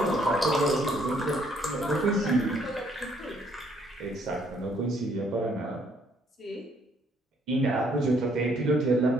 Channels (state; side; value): normal; both; correlation 0.66